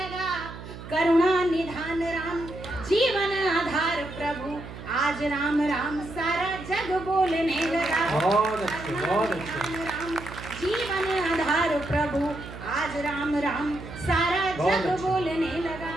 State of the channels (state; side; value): noise; right; hum, 13 dB below the sound